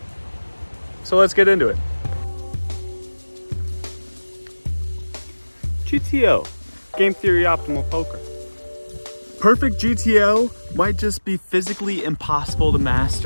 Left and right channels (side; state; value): both; inverted; correlation -1.00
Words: so let's get into it. GTO, Game Theory Optimal Poker. Perfect GTO might just be physically impossible to